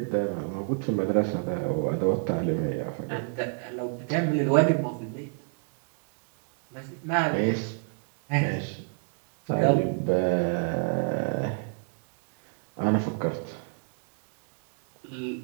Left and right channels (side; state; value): left; quieter; 39.3 dB